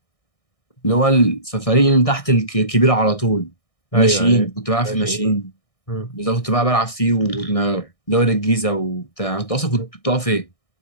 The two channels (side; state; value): right; late; 1.6 ms